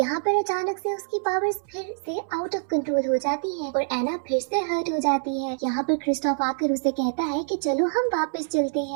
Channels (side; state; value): left; silent; 61 dB below the other